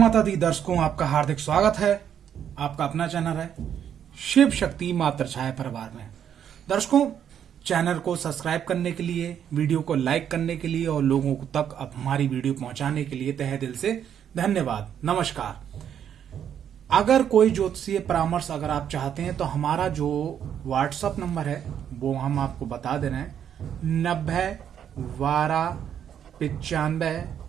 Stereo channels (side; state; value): left; quieter; 9.1 dB